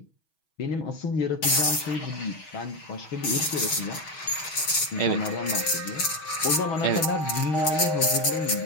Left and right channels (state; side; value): late; right; 6.3 ms